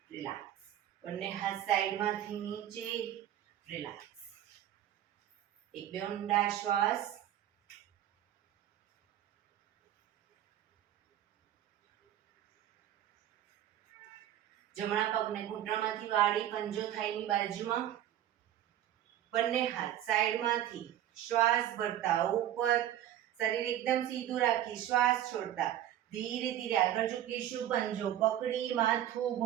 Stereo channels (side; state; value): left; quieter; 11.8 dB